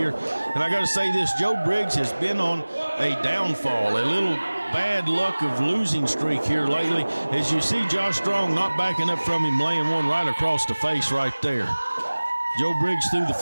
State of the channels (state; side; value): inverted; both; correlation -1.00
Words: And I got to say this, Joe Briggs has been on a downfall, a little bad luck of losing streak here lately. As you see Josh Strong not backing up from him, laying one right across the face right there. Joe Briggs threw the